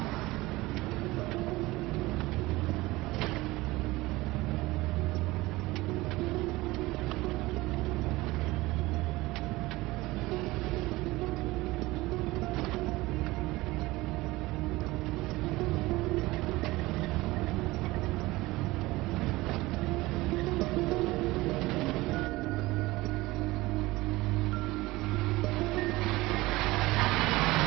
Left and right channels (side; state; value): left; quieter; 19.9 dB